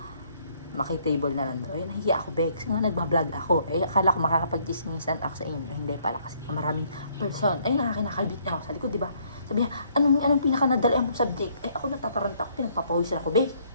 makitable na lang daw. Ay, nahiya ako, Bex. Nga, nagbablog ako. Ay, akala ko makakapag-chismisan ako sa inyo. Hindi pala kasi maraming person. Ay, nakakinakalbit niya ako sa likod, di ba? Sabi niya, anong pinaka-nadali ang subject? Ay, ako natatarant ako, pinagpapawisan ako, Bex.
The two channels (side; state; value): both; inverted; correlation -0.66